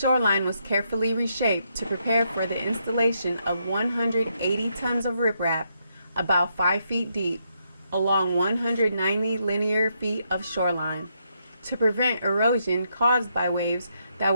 was carefully reshaped to prepare for the installation of 180 tons of riprap, about 5 feet deep, along 190 linear feet of shoreline, to prevent erosion caused by waves that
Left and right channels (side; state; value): both; inverted; correlation -0.79